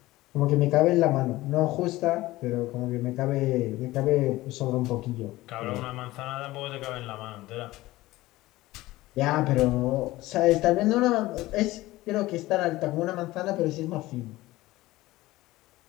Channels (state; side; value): quieter; right; 18.0 dB